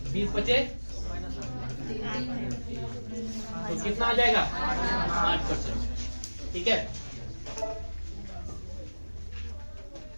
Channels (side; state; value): both; inverted; correlation -1.00